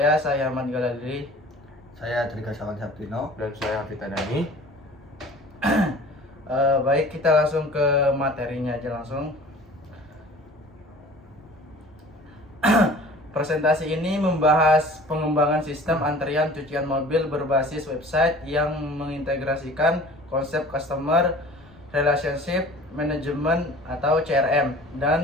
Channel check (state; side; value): normal; both; correlation 0.45